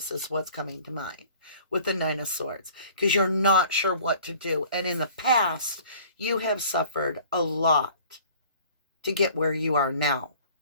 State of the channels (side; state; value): both; inverted; correlation -0.50